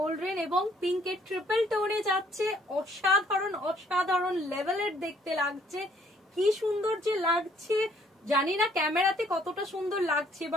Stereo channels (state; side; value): normal; both; correlation 0.63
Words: এবং পিঙ্কের ট্রিপল টোনে যাচ্ছে। অসাধারণ অসাধারণ লেভেলের দেখতে লাগছে, কি সুন্দর যে লাগছে। জানি না ক্যামেরাতে কতটা সুন্দর লাগছে,